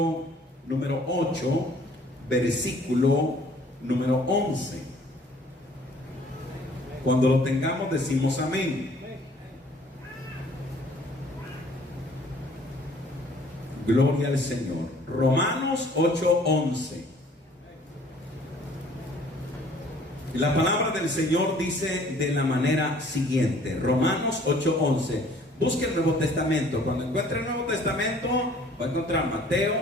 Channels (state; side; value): normal; both; correlation 0.56